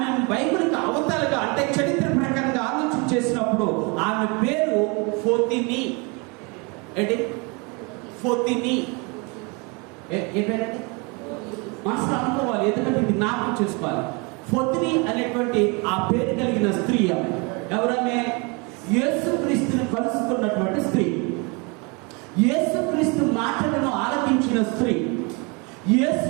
బైబిల్కి అవతలుగా అంటే చరిత్ర ప్రకారంగా ఆలోచన చేసినప్పుడు ఆమె పేరు ఫోతిని. ఏంటి ఫోతిని? ఏ పేరంటే మనసులో అనుకోవాలి, ఎందుకంటే ఇది జ్ఞాపకం చేసుకోవాలి. ఫోతిని అనేటువంటి ఆ పేరు కలిగిన స్త్రీ ఆమె. ఎవరమే? యేసుక్రీస్తుని కలుసుకున్నటువంటి స్త్రీ, యేసుక్రీస్తు మాటలను ఆలకించిన స్త్రీ, యేసు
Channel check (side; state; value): left; quieter; 30.2 dB